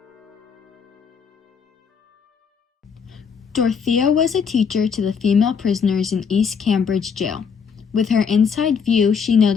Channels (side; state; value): right; quieter; 6.3 dB